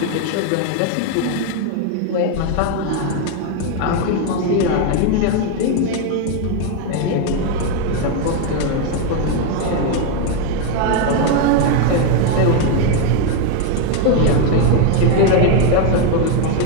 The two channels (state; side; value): different; both; correlation 0.01